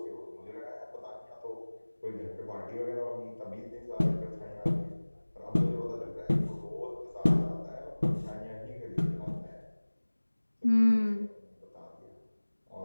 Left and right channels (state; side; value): inverted; both; correlation -1.00